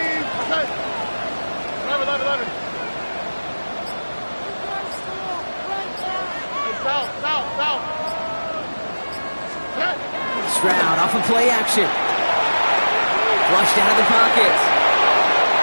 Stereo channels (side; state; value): both; inverted; correlation -1.00